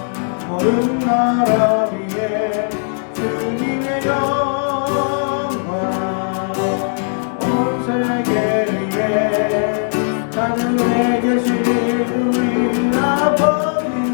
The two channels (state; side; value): silent; right; 61 dB below the other